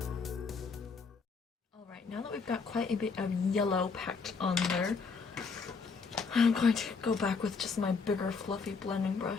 Now that we've got quite a bit of yellow packed on there, I'm going to go back with just my bigger fluffy blending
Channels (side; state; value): right; quieter; 4.9 dB